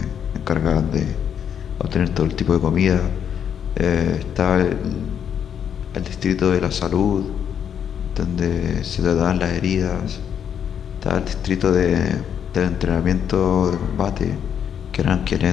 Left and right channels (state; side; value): quieter; right; 8.5 dB